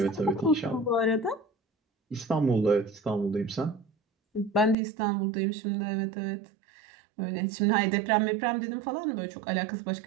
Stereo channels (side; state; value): left; drops out; at 4.8 s